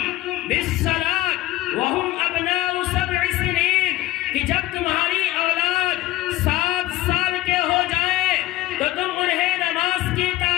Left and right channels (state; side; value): quieter; right; 16.6 dB